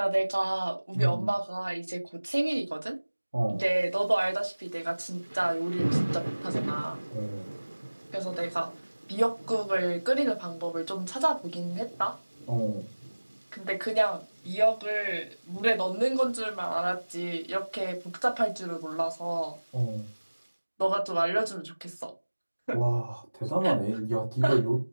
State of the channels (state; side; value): inverted; both; correlation -1.00